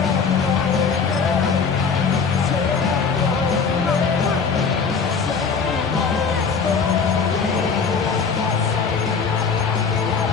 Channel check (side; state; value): right; quieter; 5.5 dB